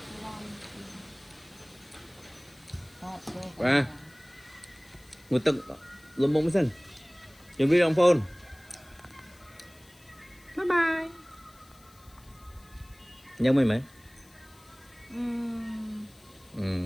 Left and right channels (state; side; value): noise; left; hiss, 26 dB below the sound